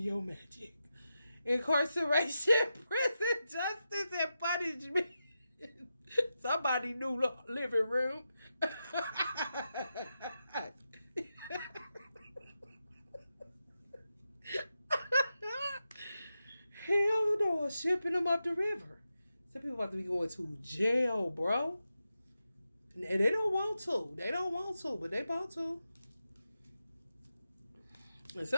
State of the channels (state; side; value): inverted; both; correlation -0.89